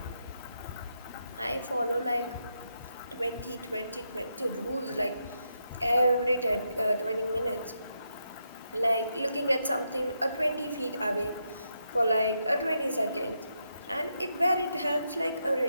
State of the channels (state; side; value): inverted; both; correlation -0.82